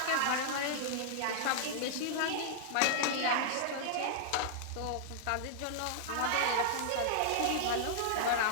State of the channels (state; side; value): different; both; correlation -0.01